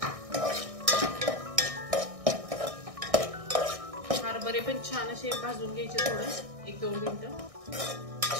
हरभरे पण छान असे भाजून घ्यायचे, थोडं 1-2 मिनिटं।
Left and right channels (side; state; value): left; late; 1.6 ms